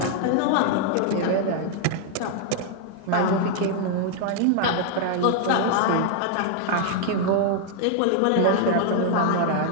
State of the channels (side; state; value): both; different; correlation 0.00